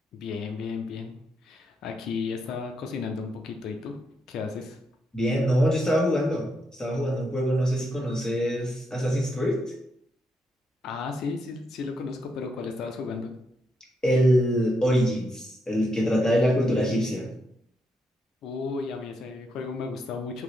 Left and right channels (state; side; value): normal; both; correlation 0.80